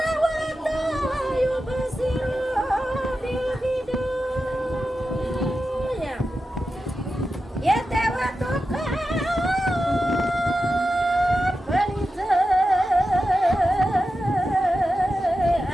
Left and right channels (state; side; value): normal; both; correlation 0.91